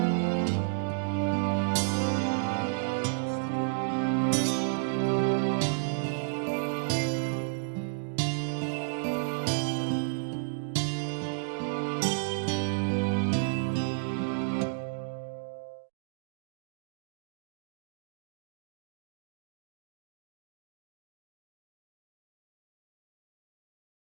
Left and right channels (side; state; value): left; silent; digital silence